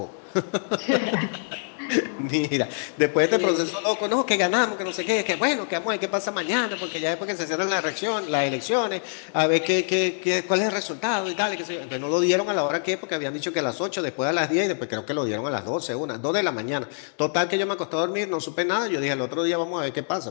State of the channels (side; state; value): right; silent; digital silence